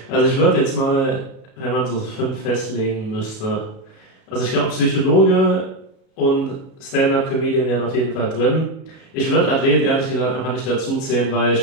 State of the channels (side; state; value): right; late; 37 ms